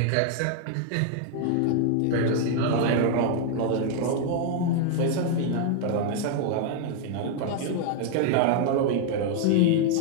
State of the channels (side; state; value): both; different; correlation 0.00